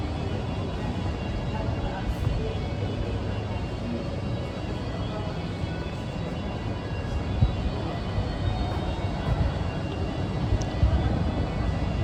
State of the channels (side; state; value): both; identical; correlation 1.00